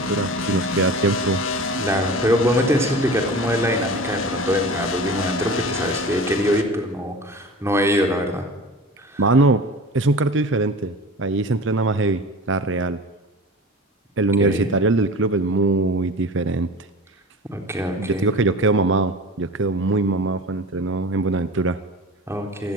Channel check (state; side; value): normal; both; correlation 0.36